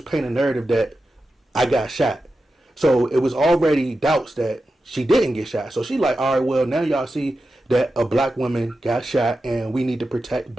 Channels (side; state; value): both; normal; correlation 0.91